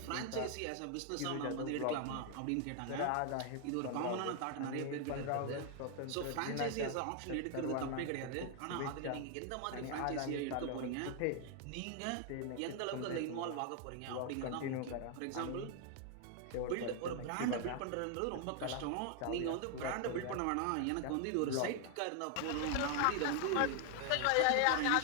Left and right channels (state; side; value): different; both; correlation 0.00